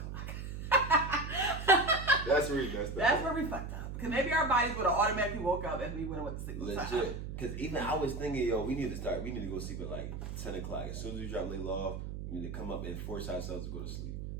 That's where we messed up. That's where we fucked up. Because maybe our bodies would have automatically woke up and we would have went to sleep. Legit. Because even I was thinking, yo, we need to go sleep at like 10 o'clock. As soon as we drop Layla off, we need to come up and force ourselves to go to sleep.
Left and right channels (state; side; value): noise; right; hum, 6 dB below the sound